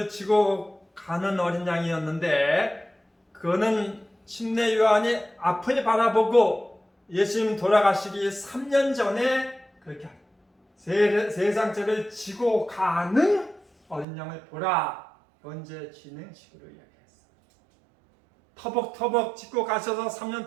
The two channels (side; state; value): left; drops out; at 14.1 s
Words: 지고 가는 어린 양이었는데 그거는 침례 요한이 앞을 바라보고 예수님 돌아가시기 3년 전에 그렇게 세상 죄를 지고 가는 어린 양을 보라. 언제 진행식으로 이야기했어. 터벅터벅 지고 가셔서 3년